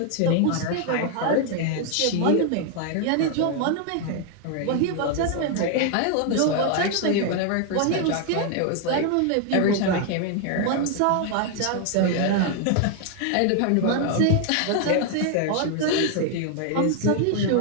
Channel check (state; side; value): different; both; correlation 0.00